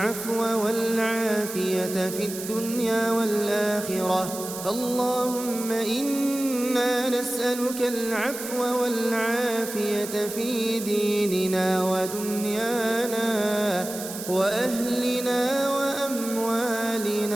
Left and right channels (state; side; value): noise; right; hiss, 10 dB below the sound